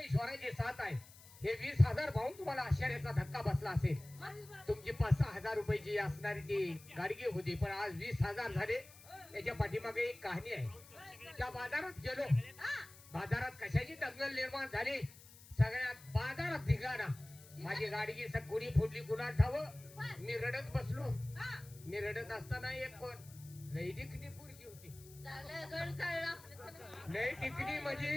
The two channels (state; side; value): noise; left; hiss, 20 dB below the sound